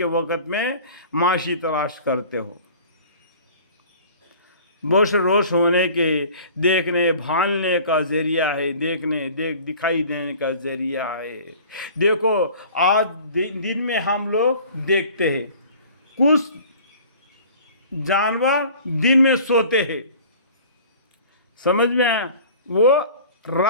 वक़्त में माशी तलाश करते हो। बोश रोश होने के, देखने भालने का ज़रिया है, दिखाई देने का ज़रिया है। देखो आज दिन में हम लोग देखते हैं, कुछ जानवर दिन में सोते हैं, समझ में आया, वो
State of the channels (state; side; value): inverted; both; correlation -0.46